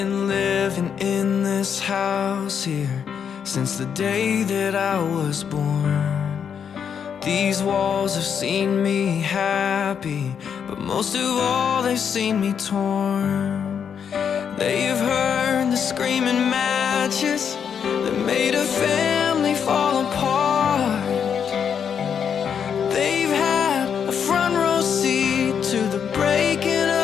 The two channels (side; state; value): right; quieter; 7.5 dB